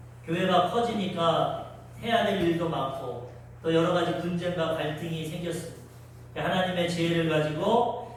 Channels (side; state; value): both; identical; correlation 1.00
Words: 교회가 커지니까 해야 될 일도 많고 또 여러 가지 분쟁과 갈등이 생겼습니다. 하나님의 지혜를